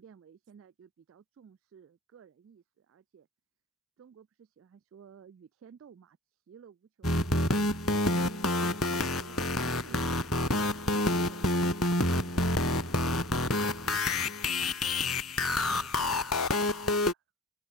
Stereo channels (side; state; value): both; normal; correlation 0.46